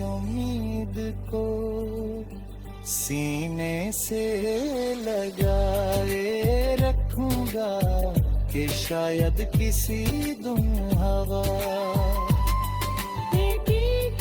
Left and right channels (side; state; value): both; identical; correlation 1.00